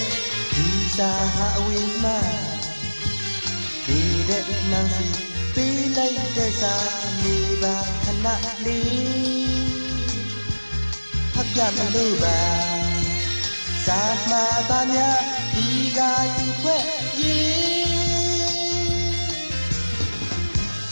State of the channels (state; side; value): inverted; both; correlation -1.00